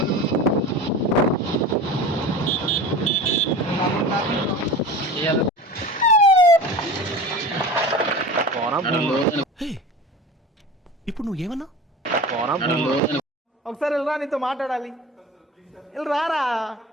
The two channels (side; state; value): both; normal; correlation 0.34